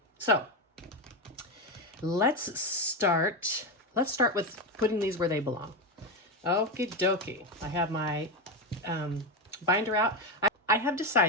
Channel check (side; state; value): both; normal; correlation 0.12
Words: So let's start with putting these where they belong. Okie dokie. I have my binder out. I have